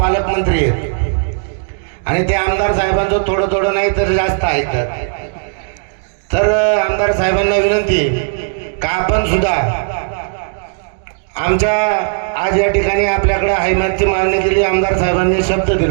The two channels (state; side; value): silent; left; digital silence